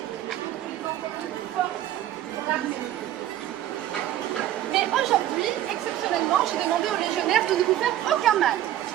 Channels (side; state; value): left; quieter; 12.8 dB